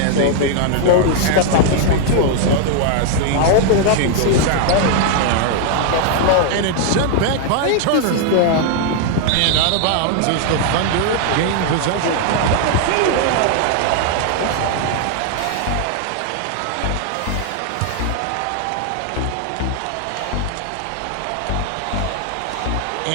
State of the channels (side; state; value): both; different; correlation 0.00